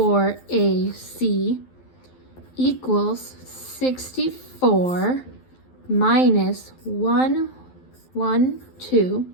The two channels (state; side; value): late; right; 12 ms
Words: equals 64 minus